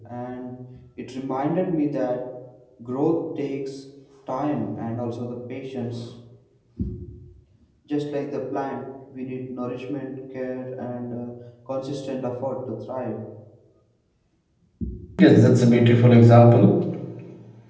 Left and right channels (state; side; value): identical; both; correlation 1.00